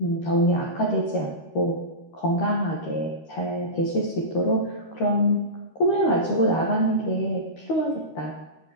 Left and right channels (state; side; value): late; right; 13 ms